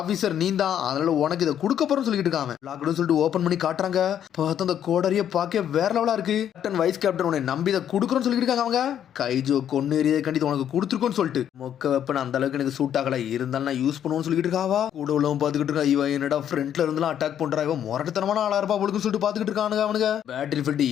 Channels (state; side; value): quieter; right; 9.8 dB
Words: நீ தான், அதனால உனக்கு இதை கொடுக்க போறோம் சொல்லிட்டு இருக்காங்க. சொல்லிட்டு ஓபன் பண்ணி காட்டுறாங்க. பார்த்து அந்த கோடரிய பார்க்க வேற லெவலா இருக்கு. கேப்டன் வைஸ் கேப்டன் உன்னை நம்பி இதை கொடுக்குறோன்னு சொல்லிட்டு இருக்காங்க அவங்க. கைஜோ கொன்னு எறிய கண்டிப்பா உனக்கு கொடுத்துருக்கோன்னு சொல்லிட்டு மொக்க வெப்பன் அந்த அளவுக்கு எனக்கு சூட் ஆகல, இருந்தாலும் நான் யூஸ் பண்ணுவோம்னு சொல்லிட்டு இருக்காவா. கூட உள்ளவன் பாத்துக்கிட்டு இருக்கா, இவன் என்னடா ஃப்ரண்ட்ல இருந்தெல்லாம் அட்டாக் பண்றா, இவன் முரட்டத்தனமான ஆளா இருப்பா அவளுக்கு சொல்லிட்டு பாத்துக்கிட்டு இருக்கானுங்க அவனுங்க. பேட்டில் ஃபீல்ட்